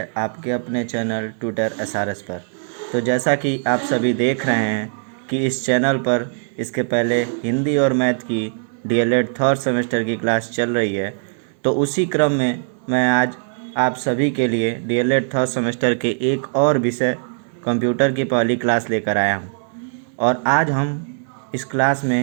आपके अपने चैनल ट्यूटर एसआरएस पर। तो जैसा कि आप सभी देख रहे हैं कि इस चैनल पर इसके पहले हिंदी और मैथ की डीएलएड थर्ड सेमेस्टर की क्लास चल रही है। तो उसी क्रम में मैं आज आप सभी के लिए डीएलएड थर्ड सेमेस्टर के एक और विषय कंप्यूटर की पहली क्लास लेकर आया हूँ। और आज हम इस क्लास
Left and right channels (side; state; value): left; silent; digital silence